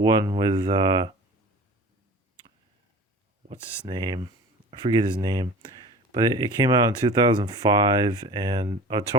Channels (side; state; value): both; normal; correlation 0.40